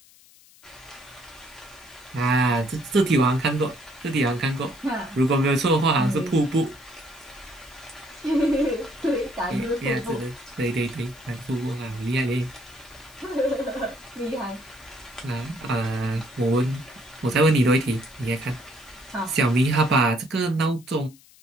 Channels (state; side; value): noise; left; hiss, 26 dB below the sound